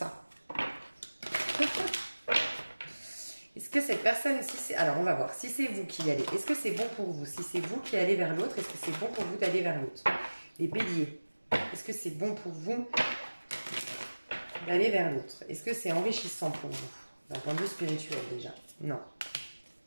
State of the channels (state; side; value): inverted; both; correlation -1.00